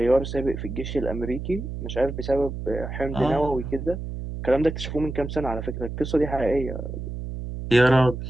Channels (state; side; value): noise; right; hum, 7 dB below the sound